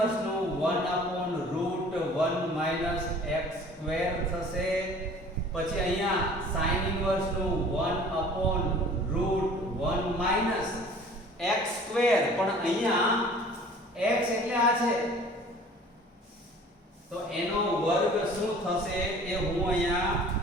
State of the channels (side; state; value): both; normal; correlation 0.48